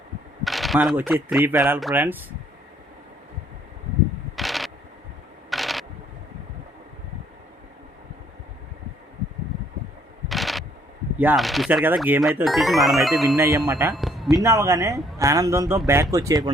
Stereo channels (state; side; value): normal; both; correlation 0.64